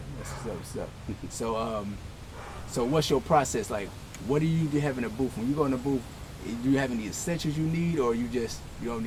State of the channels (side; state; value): both; identical; correlation 1.00